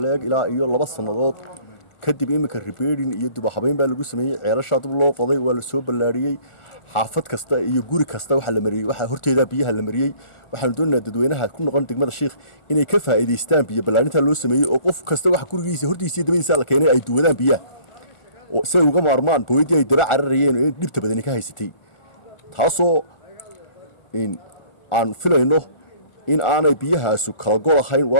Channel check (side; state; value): right; late; 1.4 ms